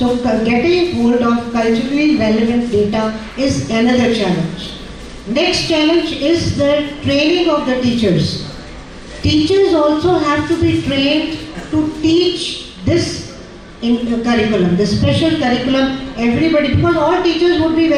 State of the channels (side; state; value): both; identical; correlation 1.00